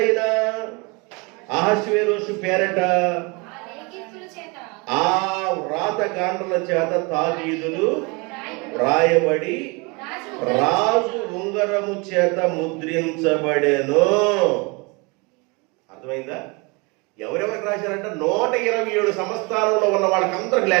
అహష్వేరోషు పేరట ఆ వ్రాతగాండ్రుల చేత తాకీదులు వ్రాయబడి రాజు ఉంగరము చేత ముద్రించబడెను. అర్థమైందా? ఎవరెవరికి రాశారంటే 127 సంస్థానంలో ఉన్న వాళ్ళకందరికి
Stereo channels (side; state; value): left; quieter; 28.8 dB